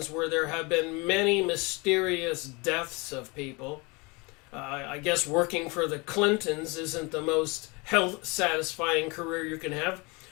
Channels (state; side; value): quieter; right; 27.5 dB